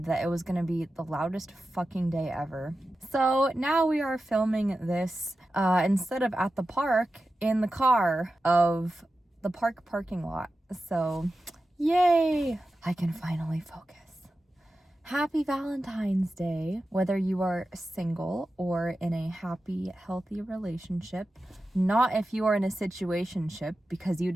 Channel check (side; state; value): both; normal; correlation 0.92